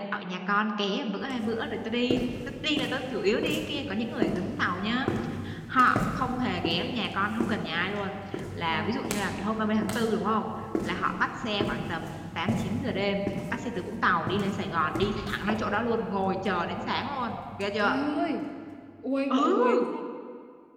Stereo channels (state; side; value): identical; both; correlation 1.00